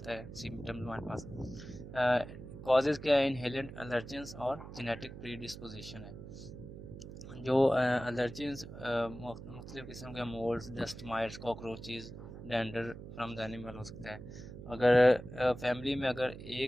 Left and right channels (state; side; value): noise; right; hum, 12 dB below the sound